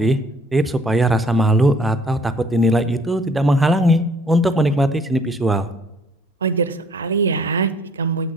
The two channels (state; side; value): normal; both; correlation 0.59